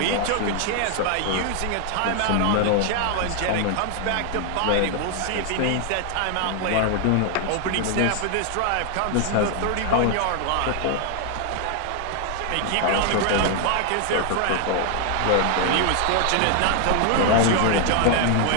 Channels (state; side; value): different; both; correlation 0.00